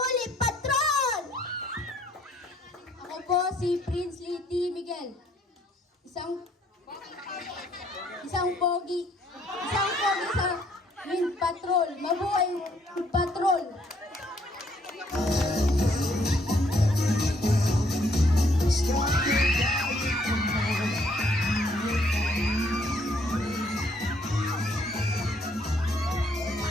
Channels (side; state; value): both; normal; correlation 0.67